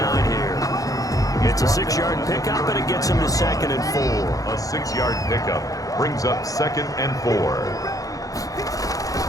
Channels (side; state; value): right; late; 0.17 ms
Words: here. It's a 6-yard pickup, and it gets him to 2nd and 4. A 6-yard pickup brings up 2nd and 4.